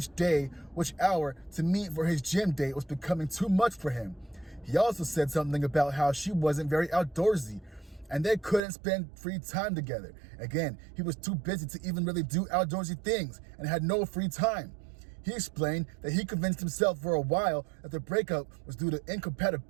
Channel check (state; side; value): drops out; left; at 8.6 s